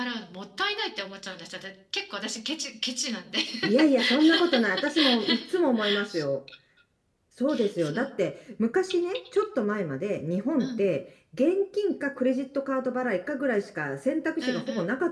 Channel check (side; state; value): both; identical; correlation 1.00